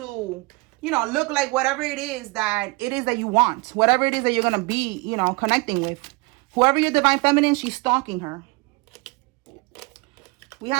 you know, look like whatever it is that you want. Whatever it is that you're going to be, you know, connecting with. Whoever your divine feminine, she's stalking her. We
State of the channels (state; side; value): quieter; left; 25.9 dB